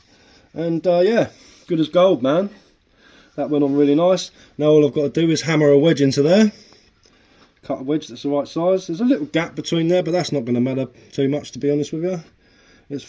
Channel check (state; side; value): identical; both; correlation 1.00